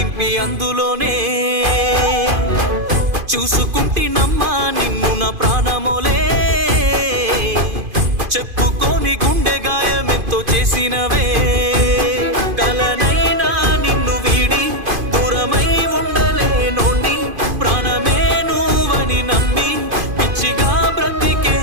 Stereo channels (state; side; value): late; left; 2.5 ms